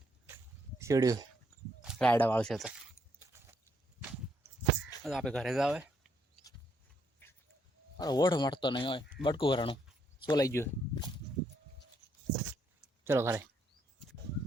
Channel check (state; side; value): normal; both; correlation 0.73